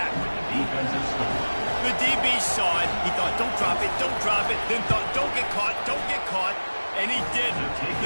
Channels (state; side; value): inverted; both; correlation -1.00